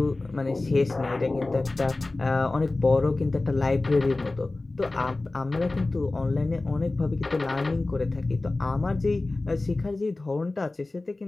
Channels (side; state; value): right; quieter; 3.1 dB